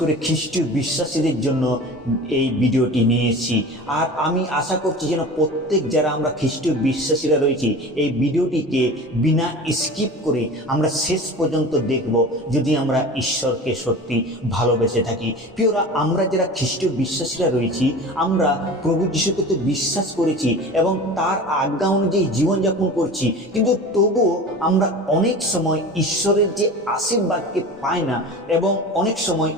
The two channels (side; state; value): both; normal; correlation 0.35